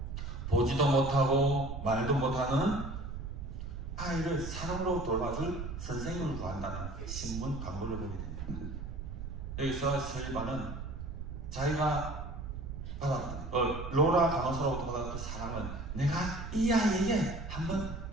보지도 못하고 말도 못하는 아이를 사랑으로 돌봐줄 선생님을 구한다는 신문 광고를 보게 됩니다. 여기서 설리반은 자기가 받았던 로라 간호사로부터 받았던 그 사랑을 내가 이 아이에게 한번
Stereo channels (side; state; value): right; noise; rumble, 7 dB below the sound